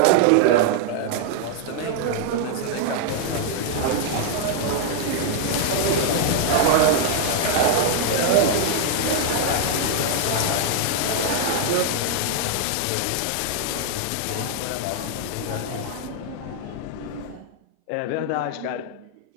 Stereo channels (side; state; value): both; different; correlation -0.01